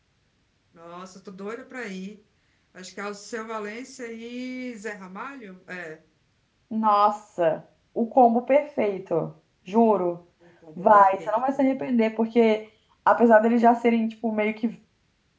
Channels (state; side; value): identical; both; correlation 1.00